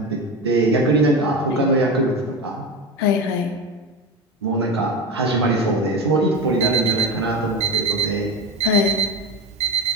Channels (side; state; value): both; normal; correlation 0.23